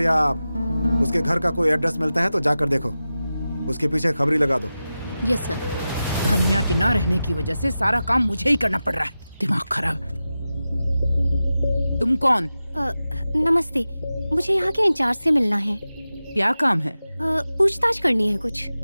उसके घर का कोई एड्रेस मिलता है तो जाकर देखो, उसके पीछे खबरी लगा दो। Yes sir. हन्या के ना रहने की वजह से सारा काम मुझे ही करना पड़ रहा है। दिमाग खराब। तुम कौन? नमस्ते, मुझे यहाँ के इंचार्ज से मिलना है। क्या काम है? पूछताछ करनी है कुछ।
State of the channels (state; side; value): inverted; both; correlation -0.94